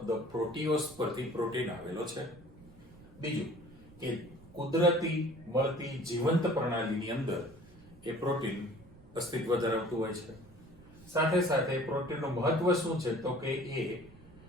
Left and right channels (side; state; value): right; noise; rumble, 22 dB below the sound